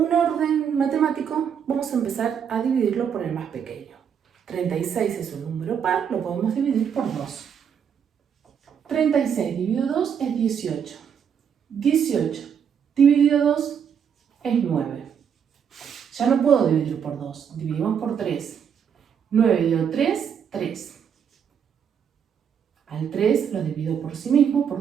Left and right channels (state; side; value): quieter; left; 7.7 dB